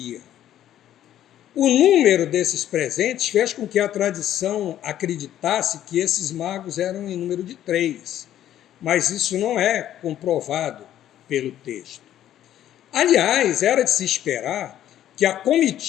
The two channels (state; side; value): quieter; right; 11.7 dB